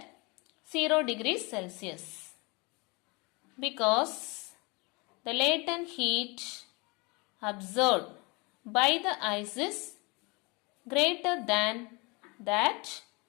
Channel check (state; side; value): quieter; right; 27.8 dB